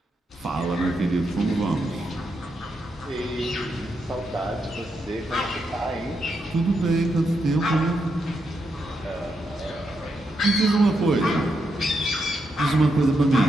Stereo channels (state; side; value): normal; both; correlation 0.82